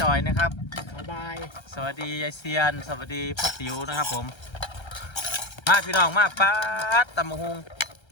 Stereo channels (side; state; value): right; late; 1.3 ms